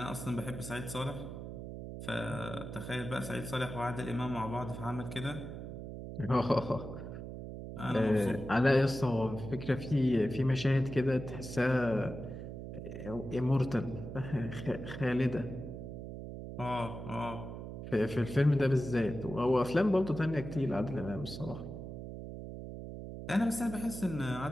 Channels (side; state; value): right; noise; hum, 9 dB below the sound